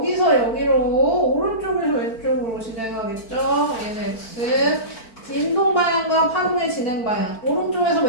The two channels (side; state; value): right; late; 4.5 ms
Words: 여기로 오른쪽에서 왼쪽으로 진행하겠죠. 얘는 X. 진동 방향과 파동의 진행 방향. 오른쪽에서